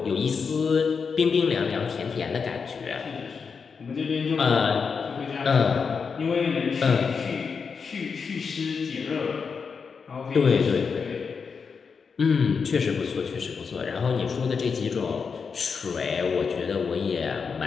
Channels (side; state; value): right; quieter; 5.6 dB